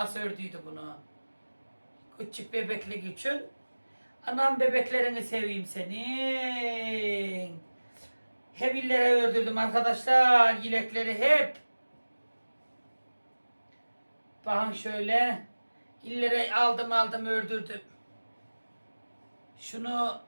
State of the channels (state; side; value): inverted; both; correlation -1.00